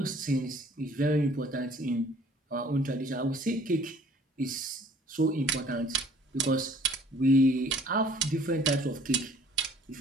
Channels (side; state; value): both; normal; correlation 0.55